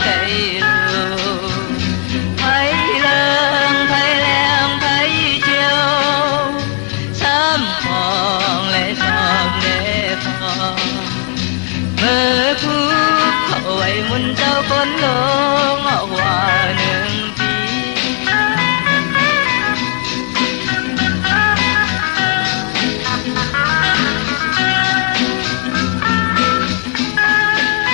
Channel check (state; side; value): quieter; right; 36.3 dB